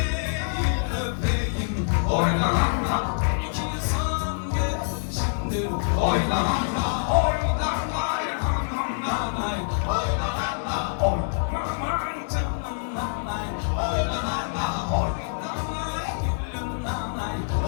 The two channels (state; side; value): silent; right; digital silence